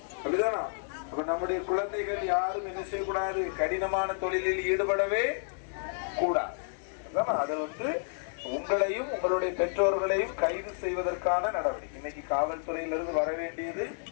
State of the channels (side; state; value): right; silent; digital silence